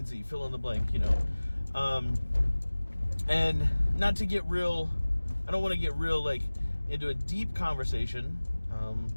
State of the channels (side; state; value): both; inverted; correlation -1.00